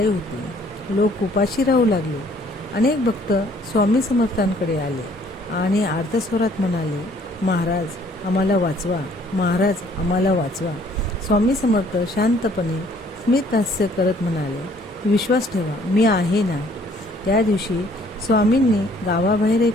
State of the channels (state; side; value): normal; both; correlation 0.60